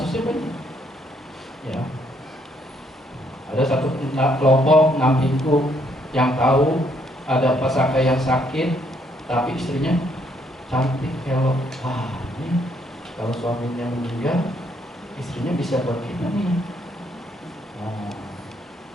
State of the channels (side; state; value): both; normal; correlation 0.70